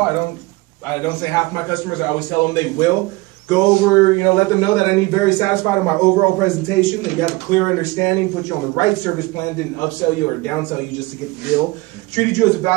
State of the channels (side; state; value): left; quieter; 22.4 dB